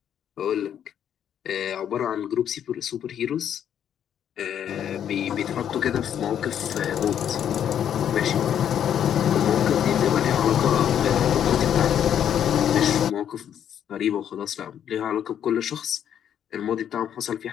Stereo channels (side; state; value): right; quieter; 9.5 dB